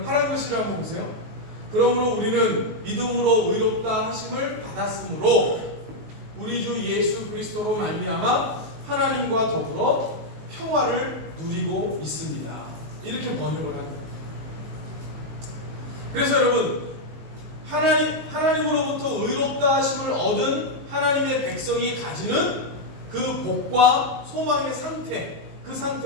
파란 글씨를 한번 보세요. 그러므로 우리는 믿음으로 의롭다 하심을 받았으므로 우리 주 예수 그리스도로 말미암아 하나님과 더불어 평화를 누리고 있습니다. 이렇게 번역을 합니다. 그래서 여러분, 하나님으로부터 의롭다 하심을 얻은 하나님의 백성이 가지는 그 복과 소망의 상태, 그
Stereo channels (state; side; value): late; left; 19 ms